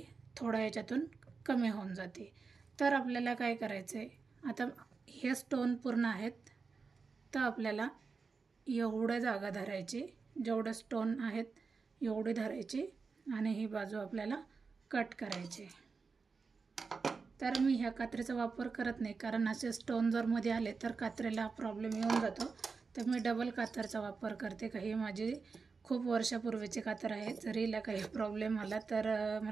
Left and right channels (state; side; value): quieter; left; 4.8 dB